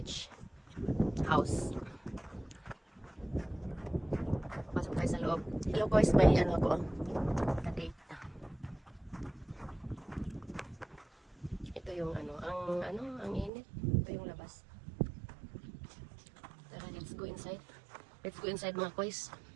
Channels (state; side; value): drops out; left; at 13.5 s